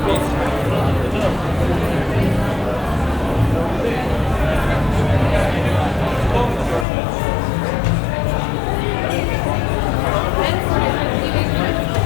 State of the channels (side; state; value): right; drops out; at 6.9 s